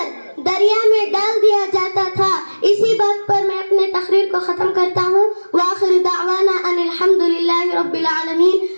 دریا میں ڈال دیا جاتا تھا. اسی بات پر میں اپنے تقریر کو ختم کرتا ہوں. وآخر دعوانا ان الحمد للہ رب العالمین.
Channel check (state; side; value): inverted; both; correlation -1.00